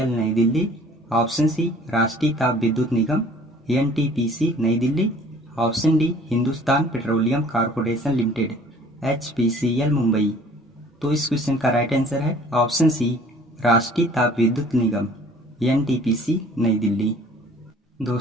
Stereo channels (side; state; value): both; normal; correlation 0.52